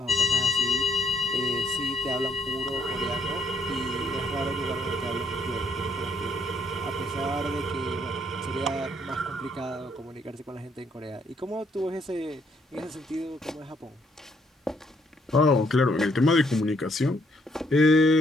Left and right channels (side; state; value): both; normal; correlation 0.69